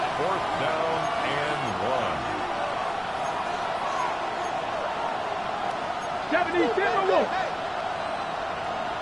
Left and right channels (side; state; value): both; identical; correlation 1.00